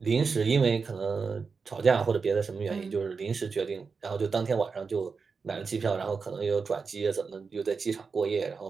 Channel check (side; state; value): left; quieter; 5.1 dB